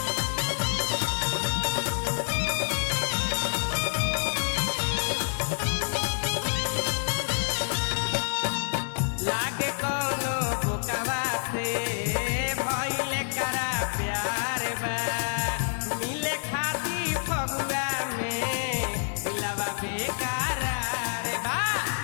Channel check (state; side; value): silent; right; 60 dB below the other